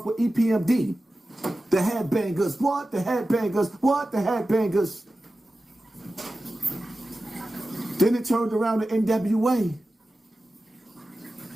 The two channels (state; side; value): normal; both; correlation 0.94